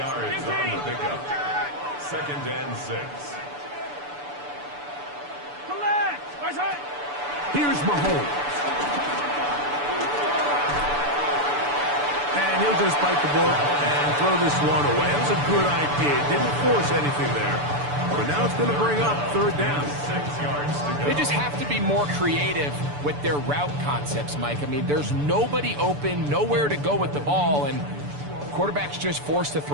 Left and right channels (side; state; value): left; late; 6.9 ms